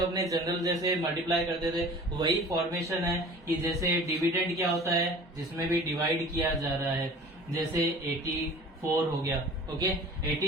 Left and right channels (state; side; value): normal; both; correlation 0.43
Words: अपने जनरल जैसे मल्टीप्लाई करते थे वही फॉर्मेशन है कि जैसे डिविडेंड क्या होता है, जिसमें भी डिवाइड किया जा रहा है, जैसे 84 हो गया। ओके,